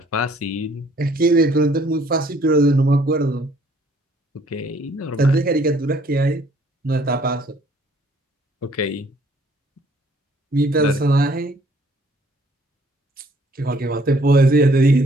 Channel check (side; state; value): both; normal; correlation 0.61